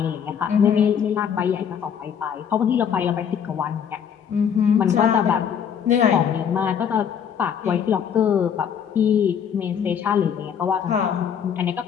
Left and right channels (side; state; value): right; quieter; 7.9 dB